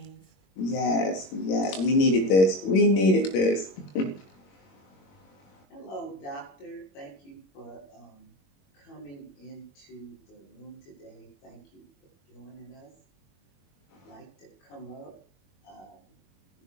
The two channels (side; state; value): right; late; 21 ms